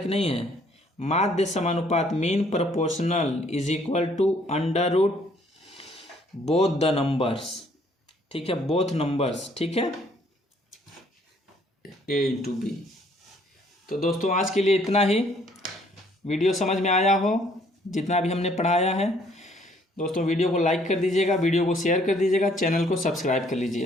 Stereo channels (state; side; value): normal; both; correlation 0.63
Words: नहीं है, माध्य समानुपात mean proportional is equal to under root both the numbers. ठीक है, बोथ नंबर्स। ठीक है, a इंटू बी। तो दोस्तों आज के लिए इतना ही। वीडियो समझ में आया हो जितना भी हमने पढ़ाया है दोस्तों, वीडियो को लाइक कर दीजिएगा, वीडियो को शेयर कर दीजिएगा, चैनल को सब्सक्राइब कर